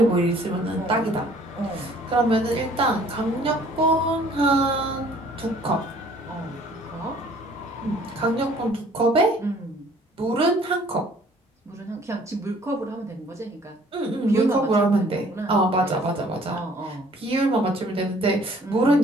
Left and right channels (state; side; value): normal; both; correlation 0.56